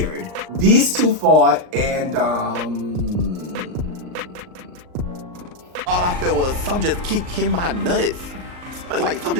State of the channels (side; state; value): left; late; 39 ms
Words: These 2 fought and all I felt was some just keep hitting my nuts. Like, some